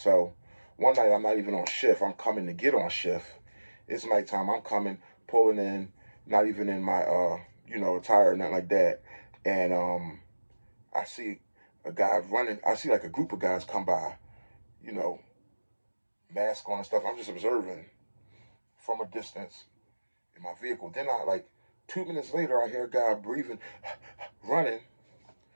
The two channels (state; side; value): inverted; both; correlation -1.00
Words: one night I'm not even on shift. I'm coming to get on shift. It's nighttime. I'm coming, pulling in, not even in my attire or nothing like that. And I see a guy running. I see like a group of guys come by, mask on and stuff. I'm just observing from a distance in my vehicle. Then 2 minutes later, I hear a guy breathing, running.